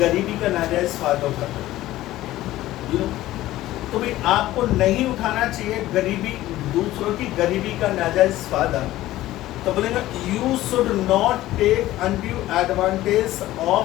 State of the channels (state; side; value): quieter; right; 15.5 dB